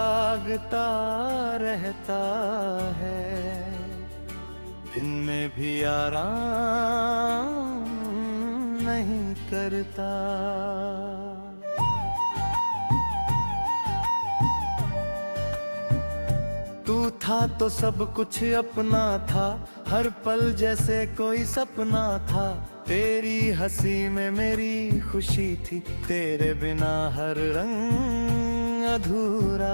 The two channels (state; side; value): inverted; both; correlation -1.00